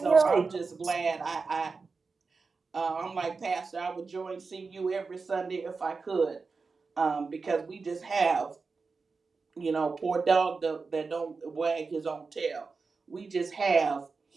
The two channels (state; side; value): quieter; left; 4.5 dB